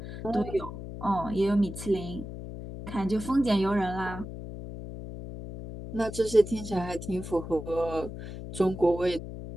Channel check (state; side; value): noise; left; hum, 9 dB below the sound